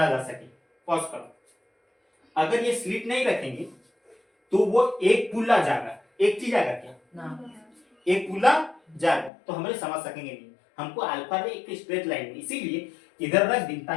जा सके। पॉज करो। अगर ये स्लिट नहीं रखेंगे तो वो एक पुल्ला जाएगा, एक चीज आएगा क्या ना? एक पुल्ला जाएगा, तो हमें समझ सकेंगे नहीं। हमको अल्फा रे एक स्ट्रेट लाइन में, इसीलिए इधर रख दी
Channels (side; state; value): right; drops out; at 9.3 s